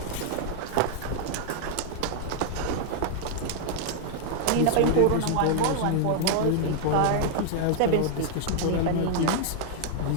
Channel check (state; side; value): different; both; correlation 0.00